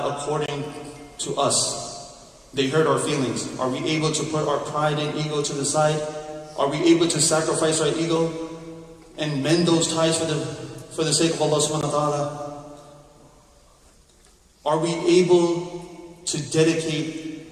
according to us? They hurt our feelings. Are we able to put our pride and ego to the side? Are we able to sacrifice our ego and mend those ties for the sake of Allah subhanahu wa ta'ala? Are we able to dedicate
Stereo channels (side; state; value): both; identical; correlation 1.00